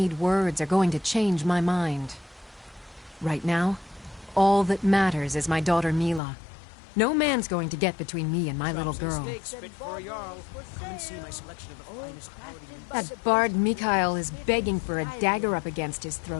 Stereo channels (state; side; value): drops out; right; at 6.2 s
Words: words are going to change my mind. Right now, all that matters is my daughter Mila. No man's going to get between me and my little girl. That bard Mikhail is begging for a dagger up against his